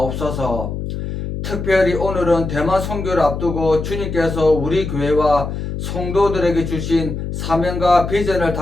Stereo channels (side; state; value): left; noise; hum, 5 dB below the sound